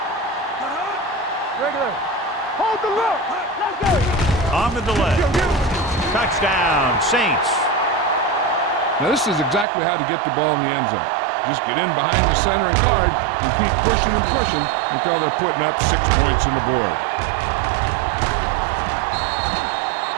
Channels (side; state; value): left; drops out; at 9.7 s